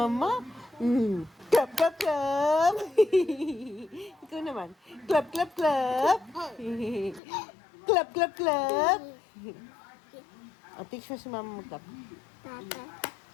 Clap, clap, clap. Ikaw naman. Clap, clap, clap. Clap, clap, clap. Teach mo si mama mag-clap.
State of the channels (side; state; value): right; drops out; at 7.2 s